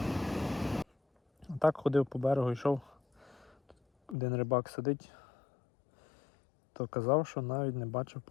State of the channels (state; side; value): drops out; right; at 4.2 s